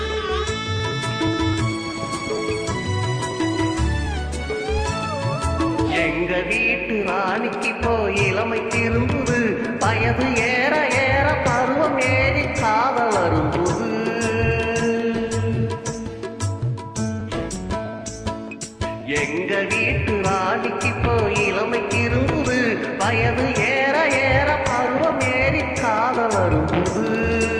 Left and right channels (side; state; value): both; identical; correlation 1.00